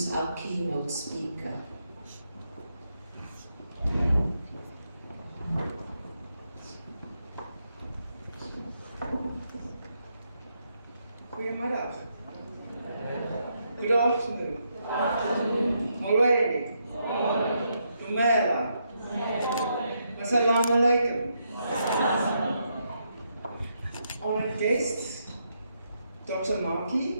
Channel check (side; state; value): both; inverted; correlation -0.79